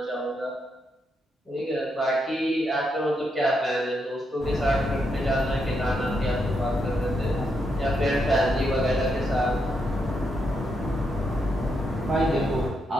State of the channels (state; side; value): normal; both; correlation 0.80